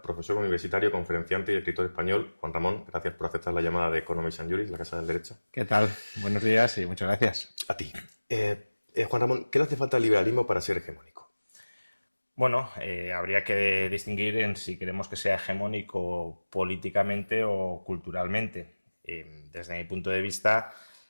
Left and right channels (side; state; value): both; inverted; correlation -1.00